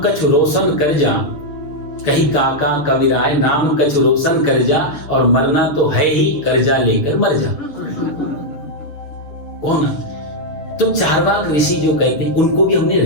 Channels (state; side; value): late; right; 6.8 ms